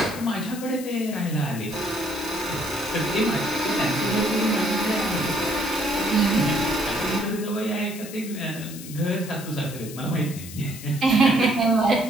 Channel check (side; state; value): left; noise; hiss, 13 dB below the sound